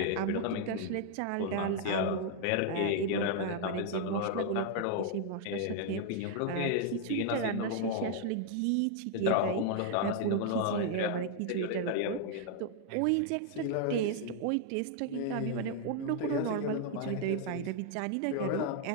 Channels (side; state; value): both; different; correlation 0.00